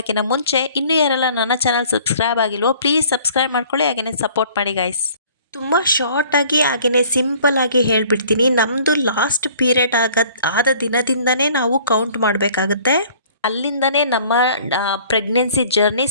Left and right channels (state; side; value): inverted; both; correlation -0.53